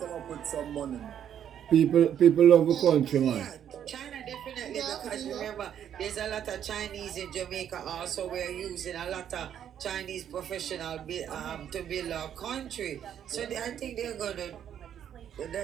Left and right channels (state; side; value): quieter; left; 9.6 dB